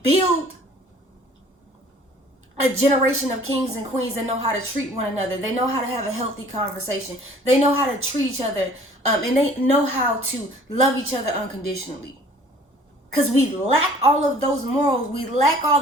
build a generation of kings and queens that know how to treat one another. They know how to have a healthy conversation. They know how to treat each other, and they know how to love each other unconditionally. Because we lack all of those morals. We lack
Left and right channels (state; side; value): normal; both; correlation 0.52